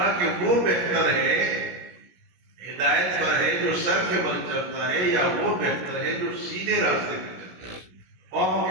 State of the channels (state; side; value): late; left; 17 ms